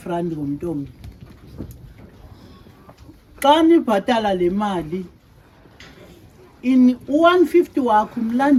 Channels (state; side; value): identical; both; correlation 1.00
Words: rand ngomntu omnye. Xa nibhatala le mali u-150 wakho